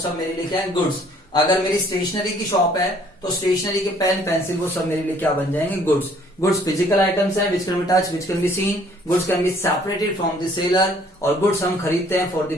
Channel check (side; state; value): both; normal; correlation 0.60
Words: मेरे लिए क्या है, गुड्स। अगर मेरी स्टेशनरी की शॉप है तो स्टेशनरी के पेन पेंसिल वो सब मेरे लिए क्या बन जाएंगे, गुड्स। गुड्स फिजिकल आइटम्स हैं which can be touch, which can be seen, goods can be separated from the seller, और गुड्स हम खरीदते हैं for the